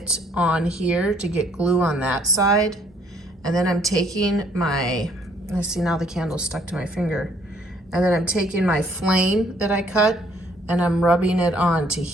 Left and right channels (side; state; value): both; normal; correlation 0.64